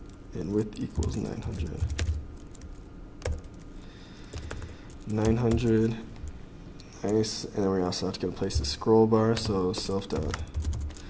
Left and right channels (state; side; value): identical; both; correlation 1.00